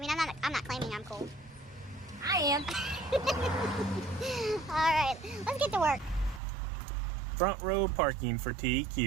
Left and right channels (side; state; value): left; drops out; at 6.4 s